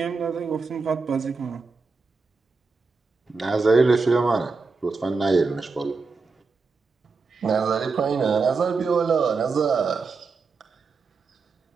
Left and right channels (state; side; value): quieter; left; 4.4 dB